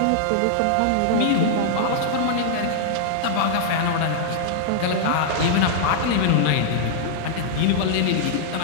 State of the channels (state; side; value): different; both; correlation -0.01